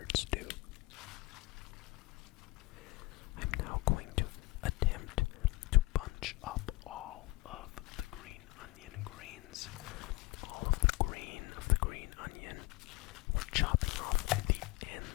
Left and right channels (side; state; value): right; quieter; 21.5 dB